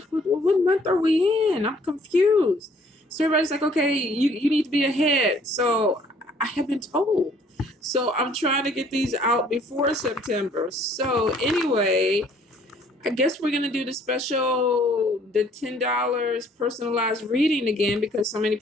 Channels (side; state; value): both; normal; correlation 0.60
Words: month are we in? I'm confused. So everybody's like, okay, you need to be ahead. So I have been told. So I'm trying to get these out before September. So anyway, I guess we're gonna do the $10 personalized reading again because so many